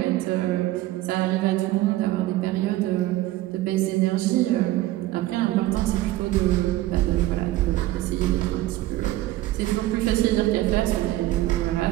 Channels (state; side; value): quieter; left; 16.1 dB